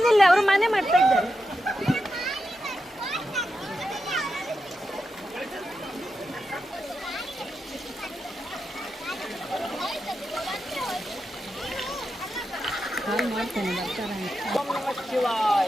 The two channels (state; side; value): normal; both; correlation 0.88